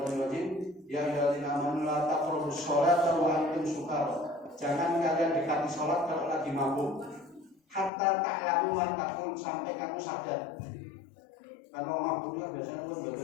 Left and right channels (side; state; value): right; drops out; at 7.9 s